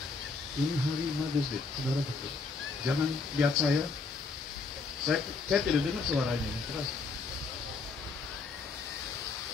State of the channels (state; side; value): quieter; right; 4.1 dB